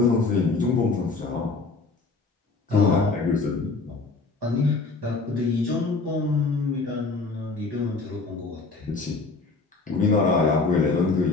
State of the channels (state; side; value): quieter; right; 3.9 dB